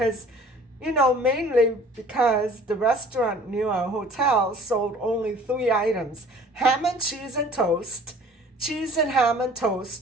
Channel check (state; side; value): normal; both; correlation 0.50